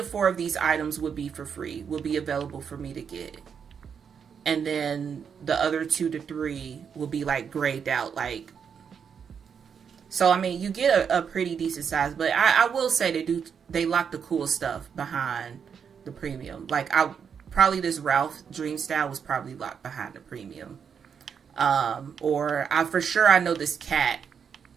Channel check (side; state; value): left; quieter; 7.0 dB